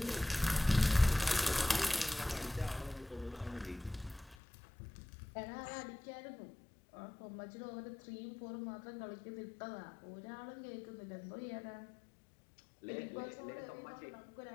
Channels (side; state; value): right; drops out; at 4.4 s